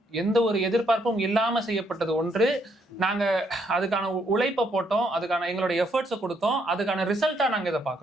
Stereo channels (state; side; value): normal; both; correlation 0.72